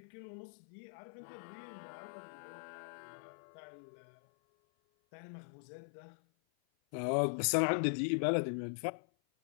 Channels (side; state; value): right; silent; 51 dB below the other